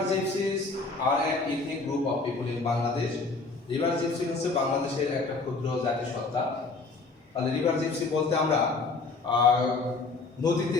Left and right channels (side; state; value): right; quieter; 3.8 dB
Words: gypsies are an ethnic group of people in Bangladesh. River gypsy হচ্ছে বাংলাদেশের একটা ক্ষুদ্র জাতিসত্তা। তাহলে রিভার জিপসি বলতে আমরা নদীতে